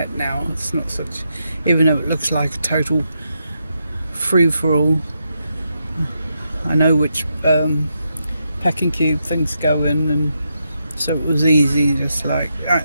now. It's not such, even though it looks like a total free-for-all, I know which packing cube things go in, and so it was easy, just like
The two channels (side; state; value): both; inverted; correlation -0.83